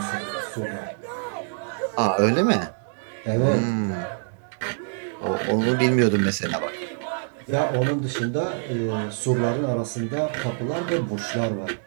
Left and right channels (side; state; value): left; silent; digital silence